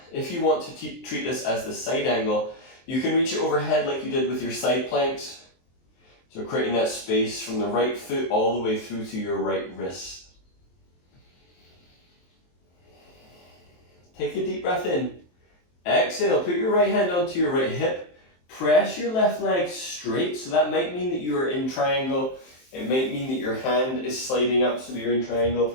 if you want to treat this as the side angle, you can reach it overhead like you did with your side planks. So creating that space from the right foot all the way through to your right wrist. Take a deep breath in. Exhale, put your right hand onto your right hip. Press your left leg straight, so that might mean that you are in triangle. It might mean that your hand is sliding up so that you're in triangle.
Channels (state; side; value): late; right; 23 ms